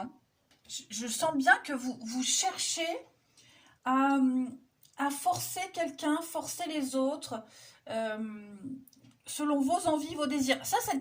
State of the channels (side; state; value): both; identical; correlation 1.00